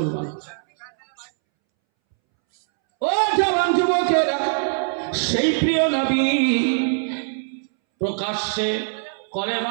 ও জওয়ান যুবকেরা, সেই প্রিয় নবী প্রকাশ্যে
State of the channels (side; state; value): left; silent; 64 dB below the other